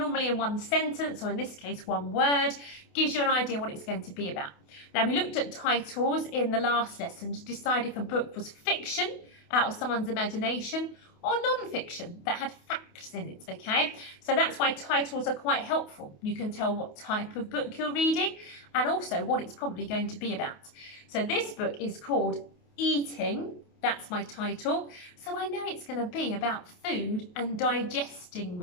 in one sentence, or in this case, one word, gives you an idea what it's going to be about. Now, we looked at titles in the last lesson to decide if a book was fiction, out of someone's imagination, or non-fiction, that had facts in it, okay? So that's why titles are quite helpful. You can tell what type of book you're reading, and also what it's probably going to be about. So this book is called Eating. That's my title. So I know it's going to be about food and digesting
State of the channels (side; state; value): right; late; 28 ms